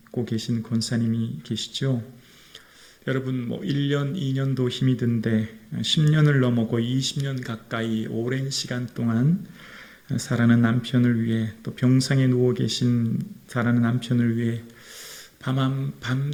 계신 권사님이 계시죠. 여러분 1년, 2년도 힘이 든데 10년을 넘어고 20년 가까이 오랜 시간 동안 사랑하는 남편을 위해 또 병상에 누워 계신 사랑하는 남편을 위해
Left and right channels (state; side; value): identical; both; correlation 1.00